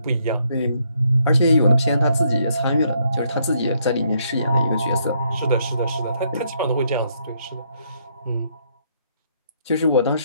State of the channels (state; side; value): inverted; both; correlation -0.72